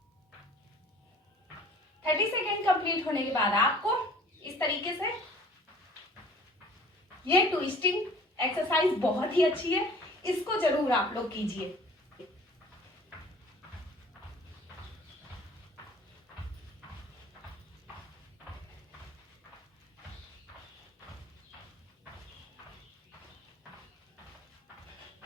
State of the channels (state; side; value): normal; both; correlation 0.49